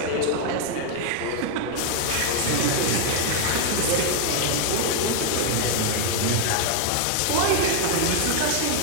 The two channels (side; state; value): both; different; correlation 0.00